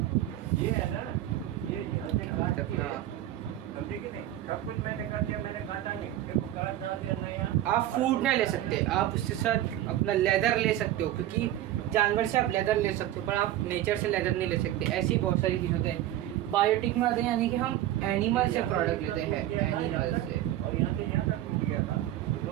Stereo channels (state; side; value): quieter; left; 13.4 dB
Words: ये है ना, ये अपना आप फूड नहीं ले सकते, आप उसके साथ अपना लेदर ले सकते हो, क्योंकि जानवर से आप लेदर ले सकते हो पर आप नेचर से लेदर नहीं ले सकते। ऐसी बहुत सारी चीज़ होते हैं। बायोटिक में आते हैं, यानी कि हम एनिमल से प्रोडक्ट लेते हैं, एनिमल से।